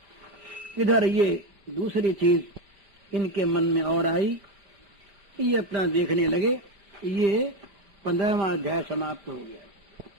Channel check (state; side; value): late; left; 4.7 ms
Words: इधर ये दूसरी चीज इनके मन में और आई, ये अपना देखने लगे, ये 15वां अध्याय समाप्त हो गया।